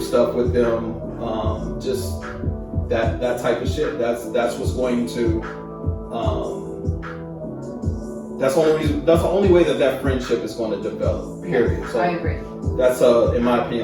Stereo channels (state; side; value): identical; both; correlation 1.00